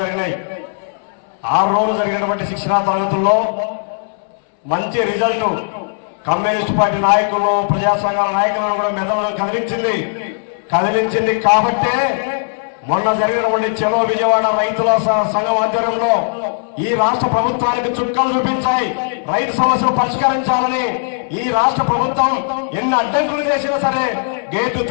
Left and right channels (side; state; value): right; silent; 66 dB below the other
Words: జరిగినాయి. 6 రోజులు జరిగినటువంటి శిక్షణా తరగతుల్లో మంచి రిజల్ట్ కమ్యూనిస్ట్ పార్టీ నాయకులు ప్రజా సంఘాల నాయకులను కూడా మెదడులో కదిలించింది కాబట్టే మొన్న జరిగినటువంటి చెలో విజయవాడ రైతుల సంఘం ఆధ్వర్యంలో ఈ రాష్ట్ర ప్రభుత్వానికి చుక్కలు చూపించాయి. రైతు సమస్యలు పరిష్కరించాలని ఈ రాష్ట్ర ప్రభుత్వం ఎన్ని అడ్డంకులు చేసినా సరే గేట్లు